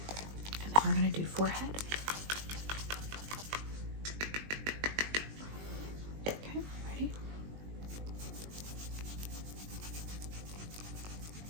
We're going to do forehead. Okay, ready?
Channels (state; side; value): late; left; 20 ms